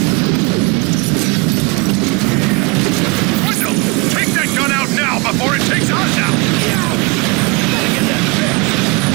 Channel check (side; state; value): left; quieter; 28.1 dB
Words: Wendell, take that gun out now before it takes us out! Gotta get that fixed!